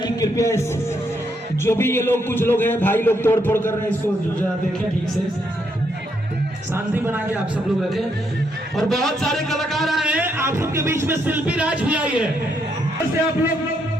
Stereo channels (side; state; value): both; normal; correlation 0.76